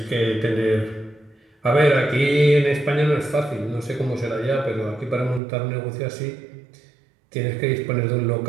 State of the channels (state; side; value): drops out; left; at 5.4 s